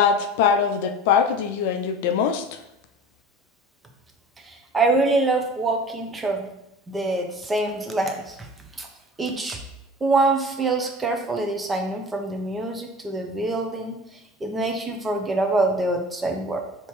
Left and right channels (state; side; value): normal; both; correlation 0.38